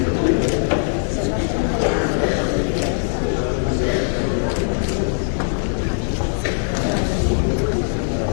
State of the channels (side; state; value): right; silent; digital silence